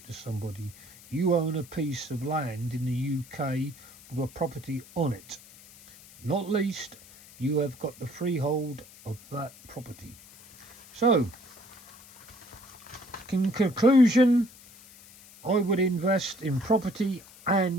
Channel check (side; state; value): left; noise; hiss, 21 dB below the sound